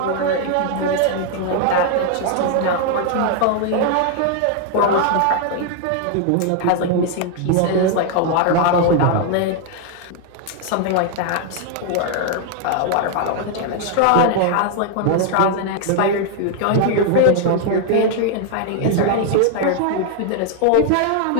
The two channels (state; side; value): different; both; correlation 0.00